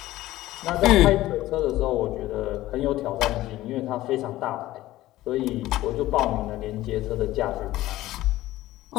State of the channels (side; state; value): right; quieter; 16.0 dB